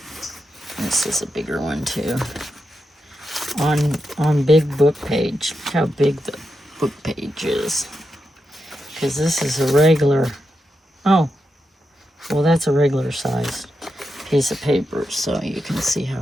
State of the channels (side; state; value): both; normal; correlation 0.87